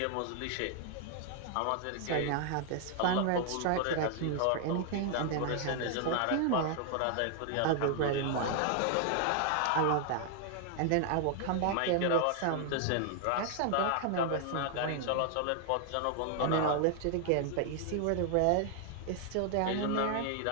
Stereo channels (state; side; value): different; both; correlation 0.00